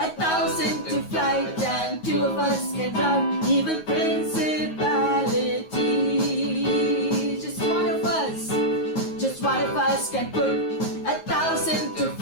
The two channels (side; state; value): right; late; 9.4 ms